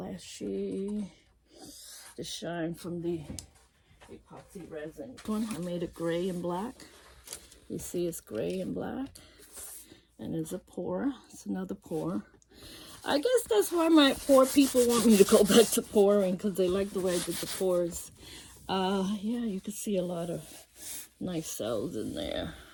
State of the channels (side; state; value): both; identical; correlation 1.00